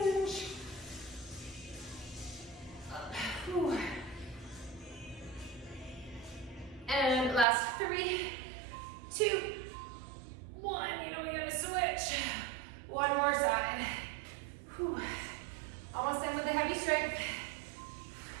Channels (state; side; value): drops out; left; at 7.5 s